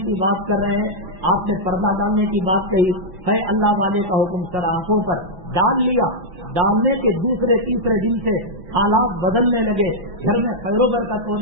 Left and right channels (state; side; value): late; left; 5.9 ms